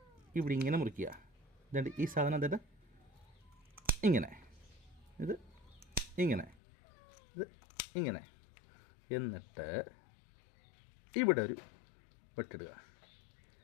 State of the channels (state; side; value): drops out; right; at 6.6 s